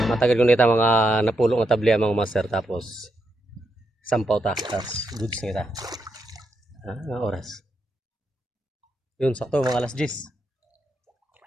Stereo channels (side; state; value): both; normal; correlation 0.82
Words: Matagal ko nita mga napulong na tabli mga master tapos sampaw ta tapos goods nita. Nga oras. Yun sakto mga alas 10.